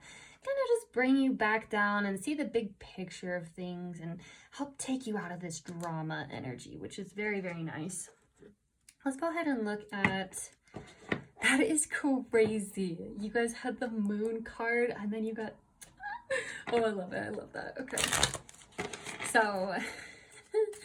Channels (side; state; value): both; identical; correlation 1.00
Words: kind of just bring you back down and see the big picture of things and help take you out of this drama energy, which is very, very nice. Let's go ahead and look at, that is crazy. You guys had the moon card and then you got, oh, I love it. I love that. Okay. So